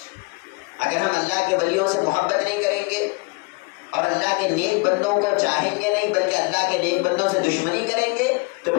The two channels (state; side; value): quieter; right; 29.0 dB